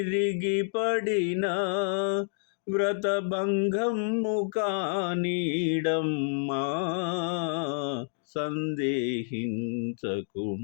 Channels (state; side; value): silent; right; digital silence